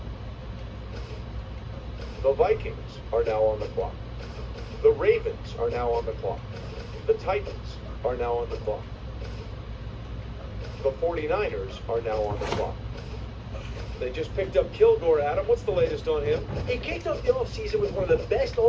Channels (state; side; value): identical; both; correlation 1.00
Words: The Vikings are now on the clock. The Ravens are now on the clock. The Titans are now on the clock. The 49ers are now on the clock. They just picked up Kilgore, Adam. What's the latest on him? He kicked off the offseason with one of the best